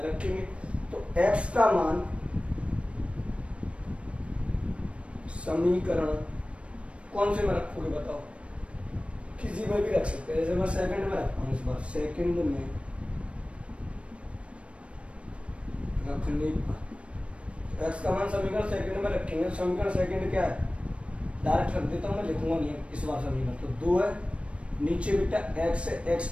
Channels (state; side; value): late; left; 0.061 ms